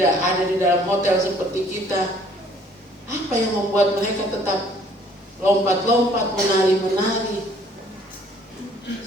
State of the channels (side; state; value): both; normal; correlation 0.59